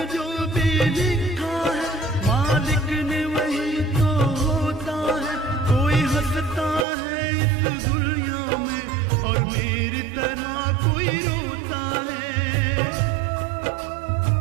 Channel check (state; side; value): drops out; left; at 6.9 s